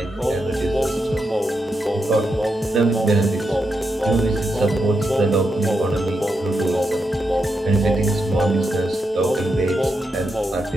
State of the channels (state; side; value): normal; both; correlation 0.84